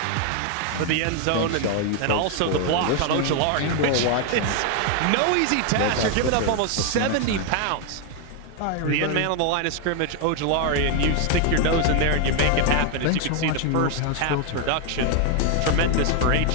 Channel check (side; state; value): both; different; correlation 0.01